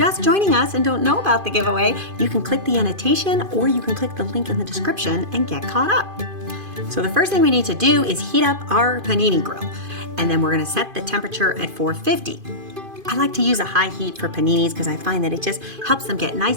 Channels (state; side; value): late; left; 2.5 ms